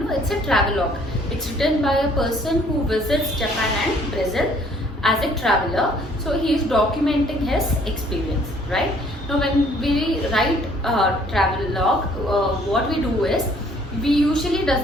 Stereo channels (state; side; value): normal; both; correlation 0.60